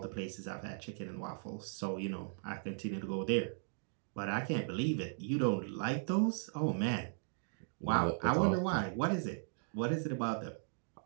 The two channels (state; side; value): silent; left; digital silence